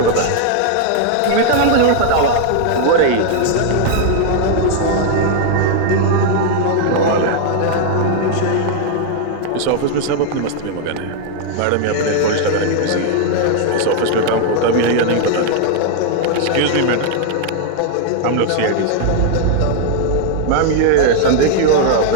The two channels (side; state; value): both; different; correlation 0.00